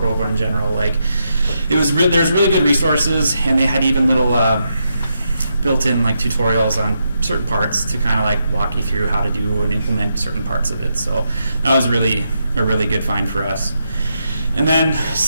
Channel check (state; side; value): inverted; both; correlation -0.82